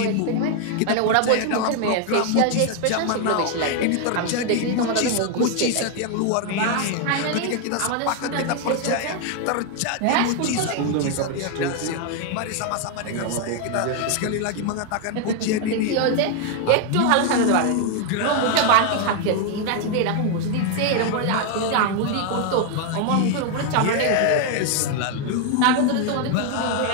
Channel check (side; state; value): both; different; correlation 0.00